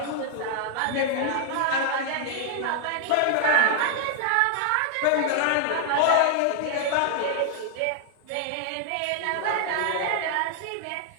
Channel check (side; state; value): both; different; correlation 0.00